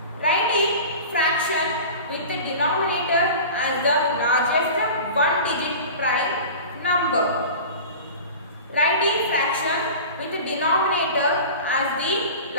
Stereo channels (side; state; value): both; inverted; correlation -0.36